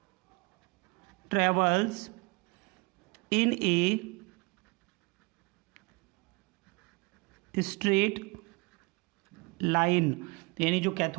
travels in a straight line, यानी जो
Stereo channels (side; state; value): left; quieter; 27.9 dB